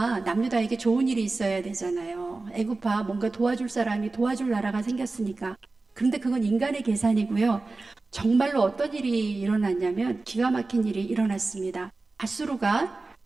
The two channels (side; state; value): left; quieter; 3.5 dB